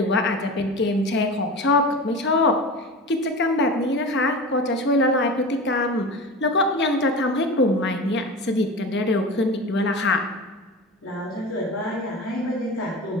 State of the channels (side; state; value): both; normal; correlation 0.31